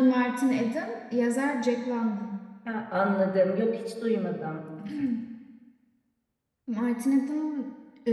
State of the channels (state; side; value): identical; both; correlation 1.00